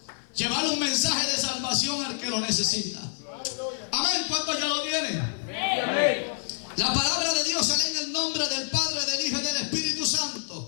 Llevar un mensaje de salvación al que lo necesita. Amén. ¿Cuántos ya lo tienen? Amén. La palabra de Dios se lee en el nombre del Padre, del Hijo y del Espíritu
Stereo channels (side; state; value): right; silent; 57 dB below the other